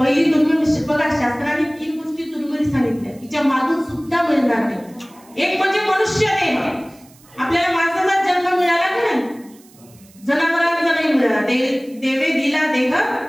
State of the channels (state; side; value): noise; right; hiss, 27 dB below the sound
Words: दुर्मिळ बघा, शास्त्राने 3 गोष्टी दुर्मिळ सांगितल्या तिच्या मागून सुद्धा मिळणार नाही. एक म्हणजे मनुष्य देह. आपल्याला माणसाचा जन्म मिळाला की नाही? जनावरांचा नाही मिळाला. देवे दिला देह,